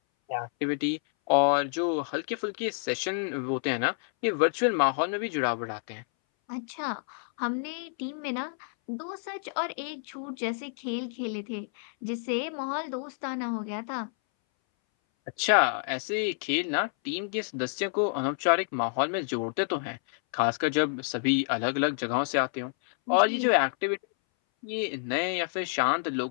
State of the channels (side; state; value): right; silent; 59 dB below the other